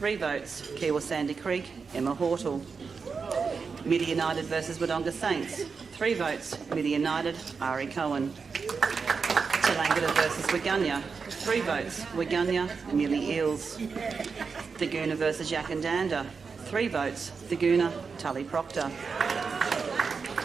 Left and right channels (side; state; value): left; quieter; 5.2 dB